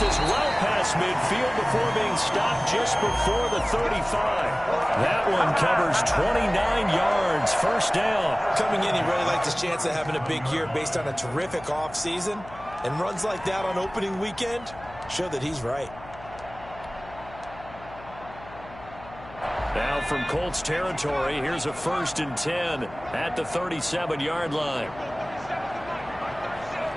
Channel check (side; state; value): left; noise; hum, 18 dB below the sound